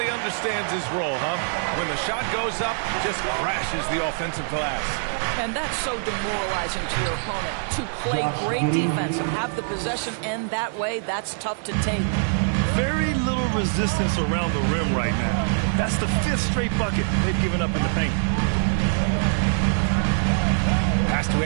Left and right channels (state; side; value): silent; left; digital silence